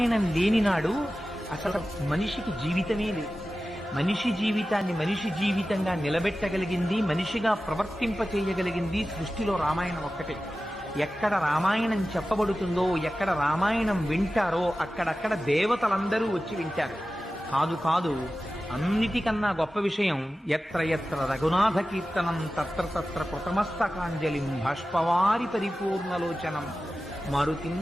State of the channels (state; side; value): normal; both; correlation 0.95